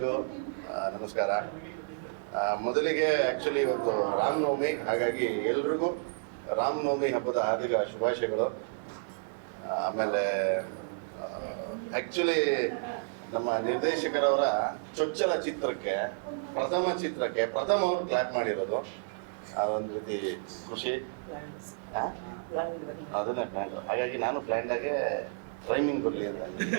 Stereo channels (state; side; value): silent; left; digital silence